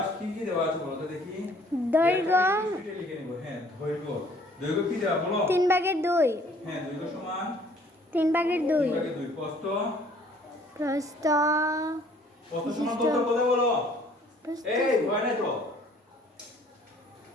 কি কি দেওয়া আছে বলো তো দেখি। দৈর্ঘ্য লিখে নিব। হ্যাঁ, দৈর্ঘ্য কি দেওয়া বলো? 3/2। হ্যাঁ, দৈর্ঘ্য সমান 3/2। 3/2। প্রস্থ প্রস্থ সমান কত বলে বলো? এই হয় না তো।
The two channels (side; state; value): both; normal; correlation 0.57